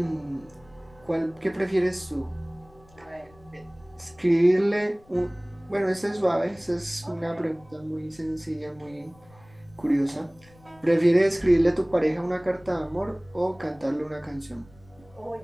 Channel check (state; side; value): noise; left; rumble, 27 dB below the sound